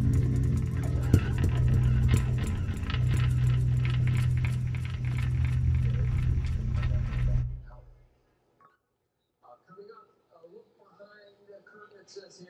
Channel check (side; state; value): both; identical; correlation 1.00